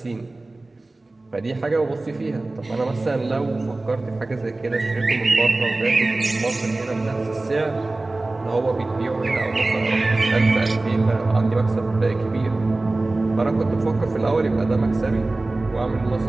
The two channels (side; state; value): left; quieter; 3.0 dB